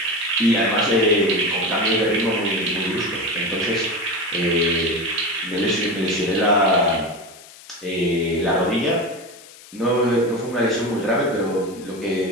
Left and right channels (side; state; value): left; noise; hiss, 20 dB below the sound